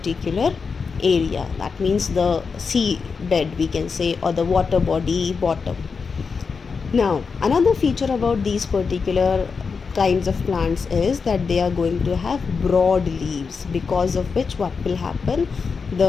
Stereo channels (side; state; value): right; quieter; 5.2 dB